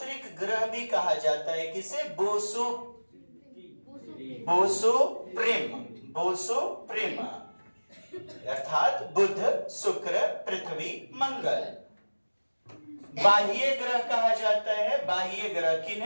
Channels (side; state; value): both; inverted; correlation -1.00